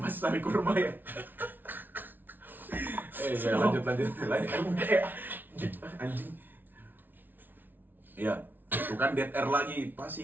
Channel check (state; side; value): late; left; 0.090 ms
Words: tarik kurma ya. Lanjut. Udah ya. Anjing. Iya. Itu kan dead air lagi